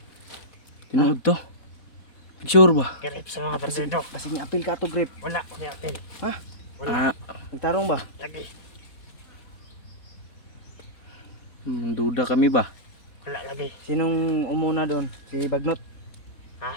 Tinood to. Sure ba? Kirip sa mga bandido. Kasi ni-apil ka to grip. Wala. Hindi apel. Ha? Wala. Ah, Nagtarong ba? Lagi. duda kami ba? Wala lagi. Sinong umuna doon? Si Bagnot? Ha?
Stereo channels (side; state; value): right; late; 4.2 ms